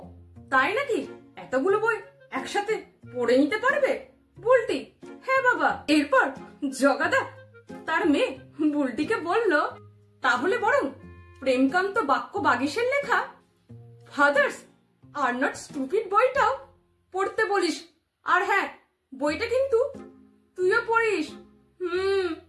তাই নাকি? এতগুলো বই একসাথে পড়ে নিতে পারবে? বুলটি, হ্যাঁ বাবা। এরপর জগাদা তার মেয়ে বুলটিকে বলল, তাহলে বরং প্রেমকান্ত বাক্য বাগীশের লেখা ফাদার্স আর নট স্টুপিড বইটাও পড়তে বলিস। আর হ্যাঁ, বইটা কিন্তু তুইও পড়িস।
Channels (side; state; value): both; identical; correlation 1.00